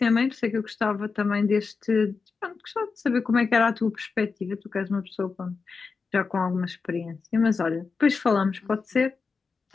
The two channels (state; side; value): quieter; right; 4.8 dB